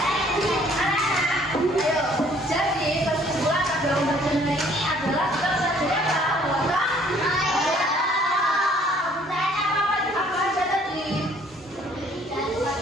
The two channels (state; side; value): normal; both; correlation 0.59